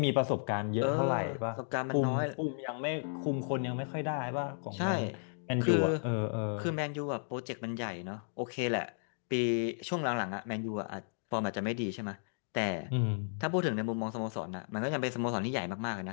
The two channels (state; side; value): silent; right; digital silence